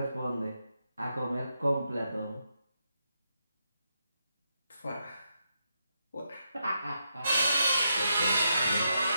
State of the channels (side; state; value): both; inverted; correlation -0.82